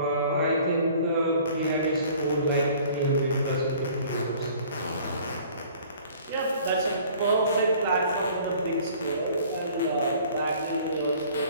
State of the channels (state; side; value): inverted; both; correlation -0.52